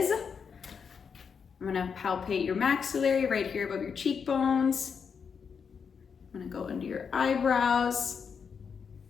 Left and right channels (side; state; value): right; quieter; 6.3 dB